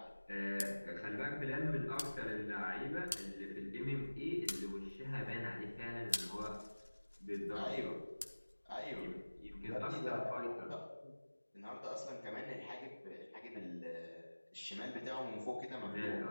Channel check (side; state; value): both; inverted; correlation -1.00